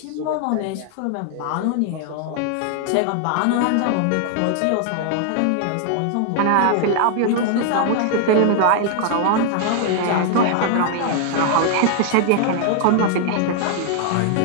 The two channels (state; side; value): different; both; correlation 0.00